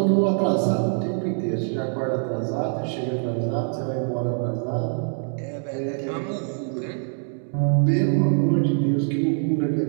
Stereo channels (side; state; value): left; silent; 63 dB below the other